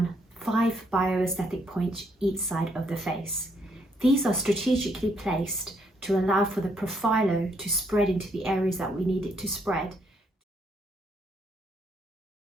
5 bioaesthetic points each side of the face. These are strategically placed to allow for the Profhilo to spread into the areas that we need it to spread.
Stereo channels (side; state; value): both; normal; correlation 0.72